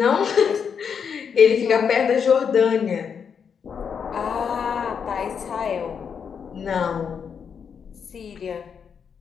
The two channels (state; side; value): quieter; right; 6.9 dB